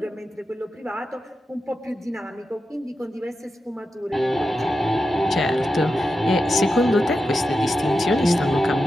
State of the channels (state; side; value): normal; both; correlation 0.90